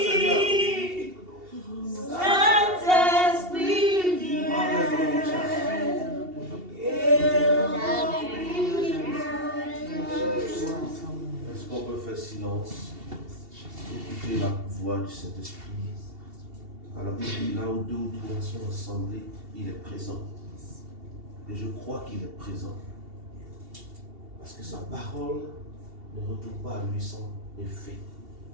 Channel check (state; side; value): late; left; 2.7 ms